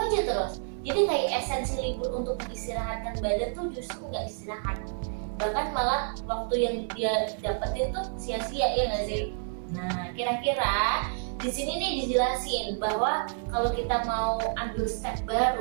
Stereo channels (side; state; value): left; silent; 59 dB below the other